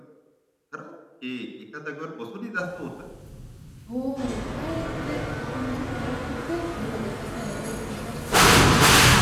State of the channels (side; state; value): both; identical; correlation 1.00